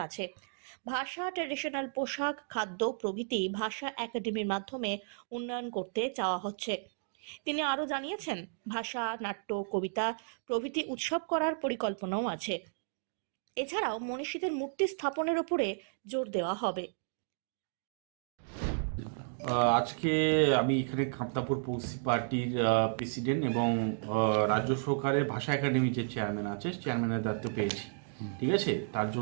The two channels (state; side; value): silent; left; digital silence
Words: ভাষা, ট্র্যাডিশনাল পোশাক, খাদ্য প্রভৃতি ভাষা একাডেমির মাধ্যমে উন্নয়ন করতে চাওয়া হচ্ছে। তিনি আরও জানিয়েছেন, ভাষা, নাট্য, কবিতা প্রভৃতি উৎসব করার পরিকল্পনাও আছে। এছাড়াও মনীষীদের মূর্তি স্থাপনের উপরে জোর দেওয়া হবে। আজকে আমি এখানে কামতাপুর পৌসি পার্টির প্রেসিডেন্ট এবং রাজ্য সরকারের ভাষা একাডেমির যে চেয়ারম্যান আছে, চেয়ারম্যানের দায়িত্ব পেয়েছি। ঠিক আছে, তার